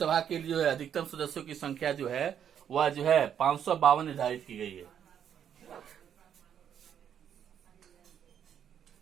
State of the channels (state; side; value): quieter; left; 8.9 dB